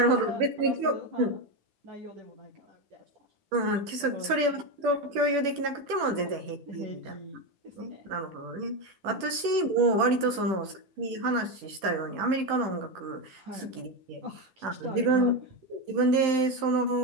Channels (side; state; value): left; late; 10 ms